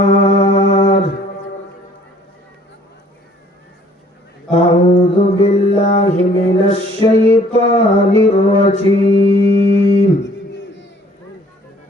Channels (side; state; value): both; normal; correlation 0.57